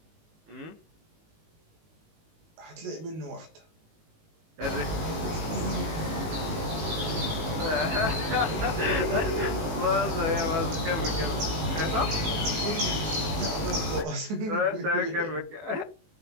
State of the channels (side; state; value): left; late; 19 ms